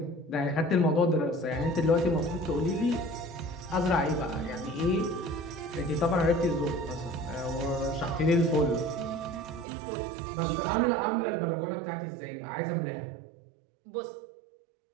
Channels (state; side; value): drops out; left; at 9.7 s